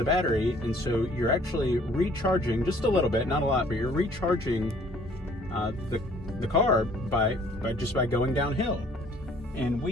battery, and so you're actually recharging just a little bit, not a lot, but you're recharging the car by going downhill. And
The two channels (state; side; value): normal; both; correlation 0.57